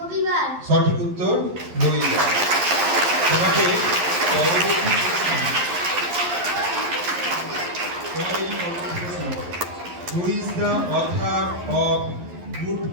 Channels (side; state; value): left; late; 11 ms